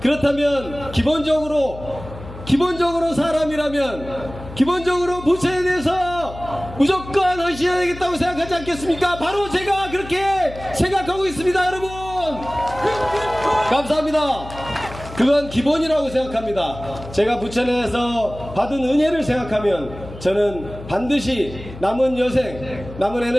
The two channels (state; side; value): noise; left; hum, 14 dB below the sound